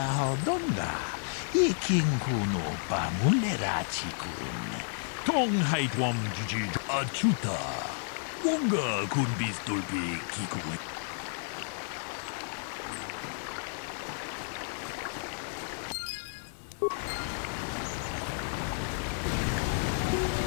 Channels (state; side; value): silent; right; digital silence